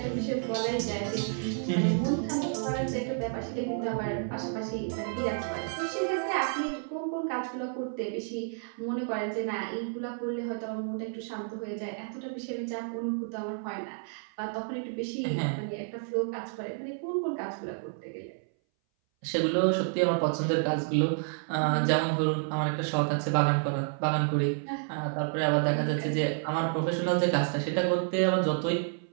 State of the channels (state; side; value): silent; left; 58 dB below the other